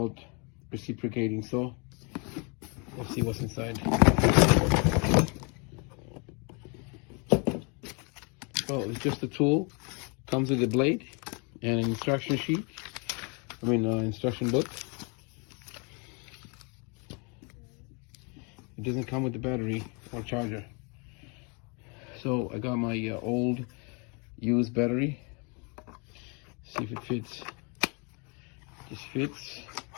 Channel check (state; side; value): quieter; right; 33.0 dB